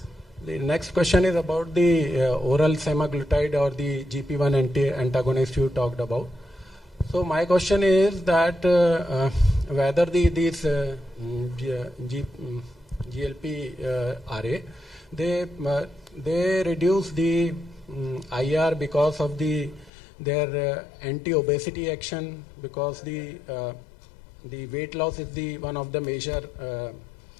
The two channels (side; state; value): right; drops out; at 19.9 s